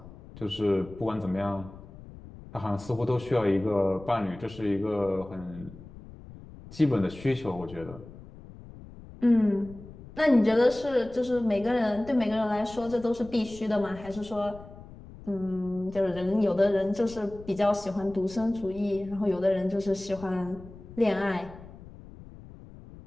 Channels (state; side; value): noise; left; rumble, 17 dB below the sound